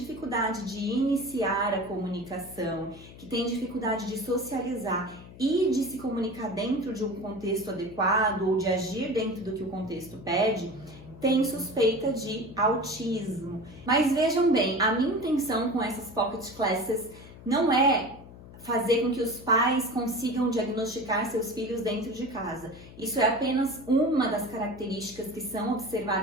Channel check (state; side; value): noise; left; hum, 18 dB below the sound